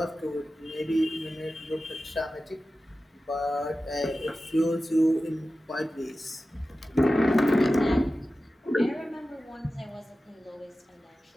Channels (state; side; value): normal; both; correlation 0.94